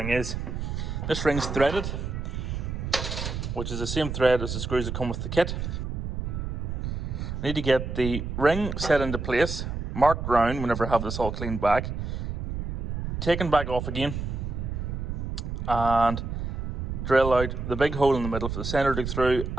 is. This ring's threaded, which is the same thread as the screws that come with the kit. I need to get the ring set into place, marked round whenever I have this all cleaned back, taken back off again, and drill out the big hole in the middle for the sender to go through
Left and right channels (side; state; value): right; noise; rumble, 4 dB below the sound